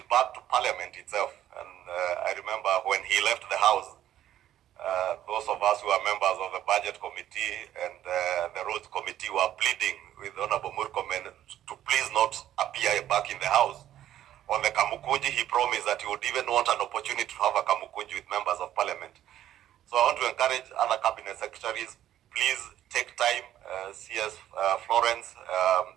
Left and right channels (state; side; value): quieter; left; 12.0 dB